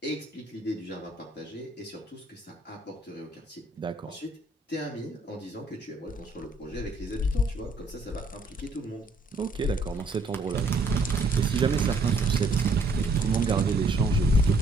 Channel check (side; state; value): left; quieter; 3.0 dB